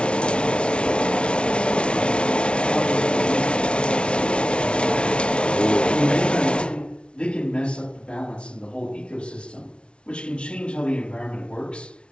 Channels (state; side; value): late; right; 0.058 ms